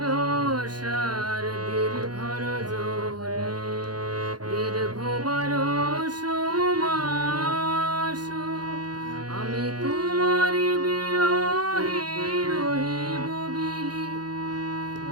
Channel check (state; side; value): late; left; 0.69 ms